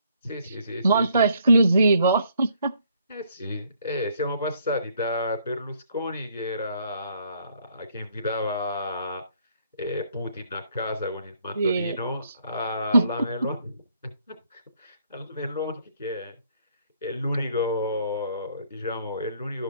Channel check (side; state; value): both; inverted; correlation -0.67